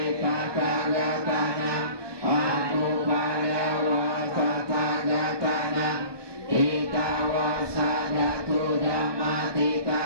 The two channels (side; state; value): left; late; 1.2 ms